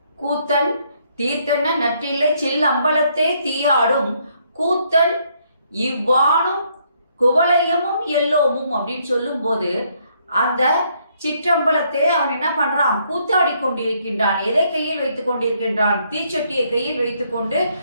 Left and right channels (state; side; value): inverted; both; correlation -0.70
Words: கூத்தன் தீர்த்தன நற்றில்லை சில்லம்பலத்தே தீயாடும், கூத்தன் இவ்வாணும் குவலயமும் எல்லோமும் அப்படின்னு சொல்லும் போது அந்த சிற்றம்பலத்தை அவன் என்ன பண்றான்? கூத்தாடி கொண்டிருக்கின்றான். எதை கையில் வைத்துக் கொண்டிருக்கின்றான்? தீச்சட்டியை கையில் வைத்துக்கொண்டு